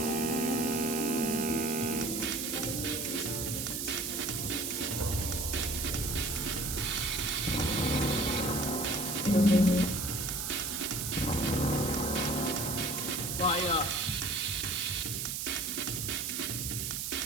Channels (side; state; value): right; noise; hiss, 2 dB below the sound